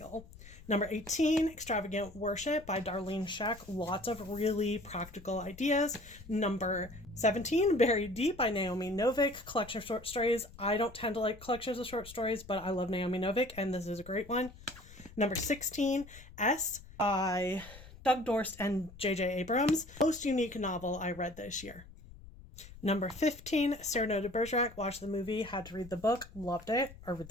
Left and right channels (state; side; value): noise; left; rumble, 19 dB below the sound